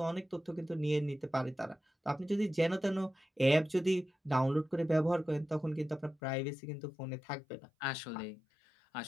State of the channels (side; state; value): right; drops out; at 6.2 s